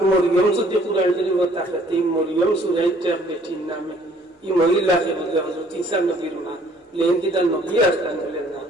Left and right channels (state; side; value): normal; both; correlation 0.59